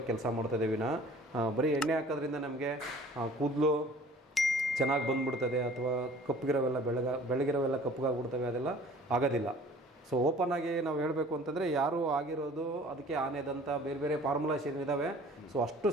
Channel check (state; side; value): normal; both; correlation 0.49